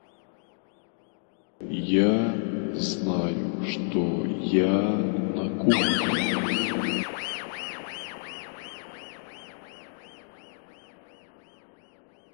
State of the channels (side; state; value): right; silent; 58 dB below the other